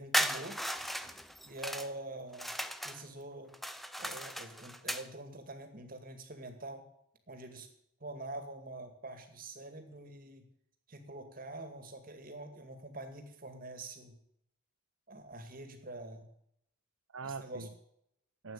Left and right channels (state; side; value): normal; both; correlation 0.56